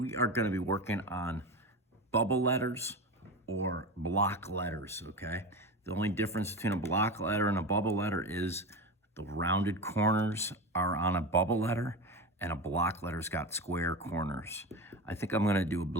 are going to be working on bubble letters or block letters, okay? The only difference between a block letter and a bubble letter is the rounded corners are on a bubble letter, and a block letter's got square corners. I think I'm going to do a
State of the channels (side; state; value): both; normal; correlation 0.24